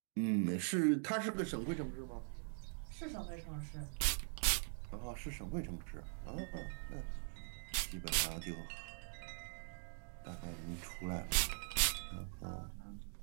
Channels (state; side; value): silent; left; digital silence